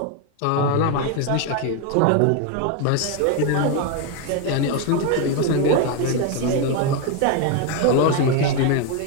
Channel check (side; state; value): both; different; correlation 0.02